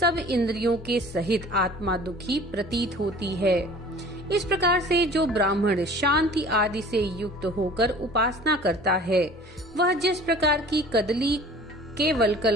इंद्रियों के सहित आत्मा दुखी प्रतीत होती है। इस प्रकार से जो ब्राह्मण शांति आदि से युक्त होकर उपासना करता है, वह जिस प्रकार की कदली के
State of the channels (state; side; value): normal; both; correlation 0.46